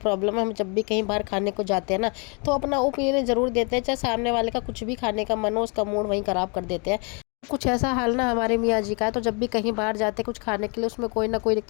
है, हम जब भी कहीं बाहर खाने को जाते हैं ना, तो अपना ओपिनियन ज़रूर देते हैं, चाहे सामने वाले का कुछ भी खाने का मन हो, उसका मूड वहीं ख़राब कर देते हैं। कुछ ऐसा हाल ना हमारे मियाँ जी का है। तो जब भी कहीं बाहर जाते कुछ खाने के लिए, उसमें कोई ना कोई एक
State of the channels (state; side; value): quieter; right; 34.1 dB